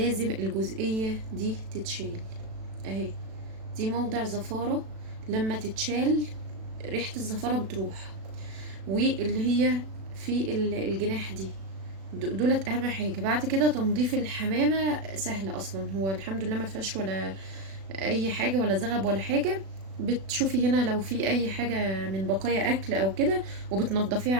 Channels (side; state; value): left; late; 36 ms